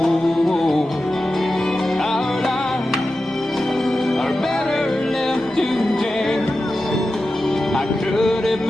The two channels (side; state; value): both; normal; correlation 0.92